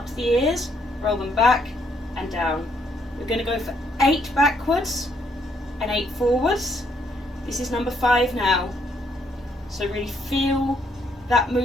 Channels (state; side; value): normal; both; correlation 0.72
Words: to the ears, roll them back and down. We're going to go for 8 backwards and 8 forwards. This is number 5 now. So really feel that